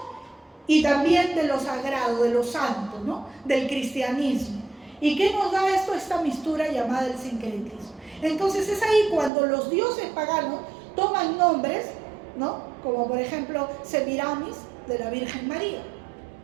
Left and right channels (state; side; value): drops out; left; at 9.3 s